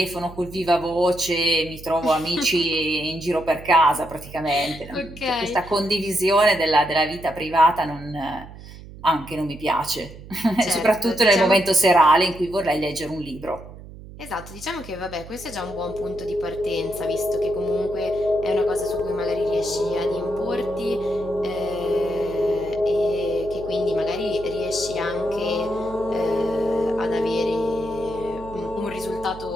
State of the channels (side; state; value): right; noise; hum, 16 dB below the sound